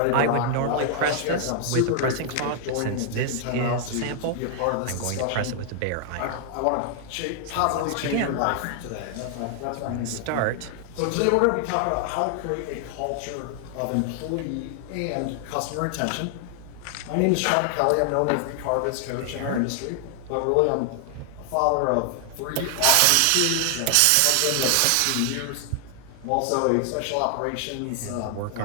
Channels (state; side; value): different; both; correlation 0.00